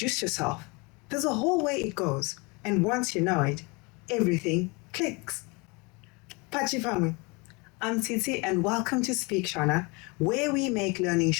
yourself. There's a whole way it goes, and once you know it, everything clicks. Pachifamwe. I'm Titi, and welcome to Speak Shona, where we make learning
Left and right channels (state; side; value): quieter; right; 28.2 dB